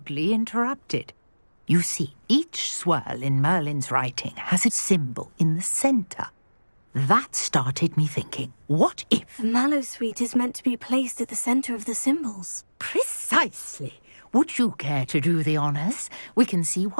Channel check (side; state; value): both; inverted; correlation -1.00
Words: interrupted. You see, each swirl in Merlin's writing has a symbol in the centre. That started me thinking, what if... The Mallowsweet is meant to be placed at the centre of the symbols. Precisely. Would you care to do the honours? We can see